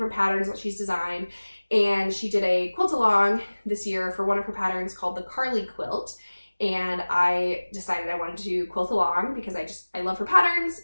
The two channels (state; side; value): inverted; both; correlation -1.00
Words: patterns that she's designed. And she did a quilt along this year for one of her patterns called the Carly quilt. And I decided I wanted to quilt along because I love her patterns,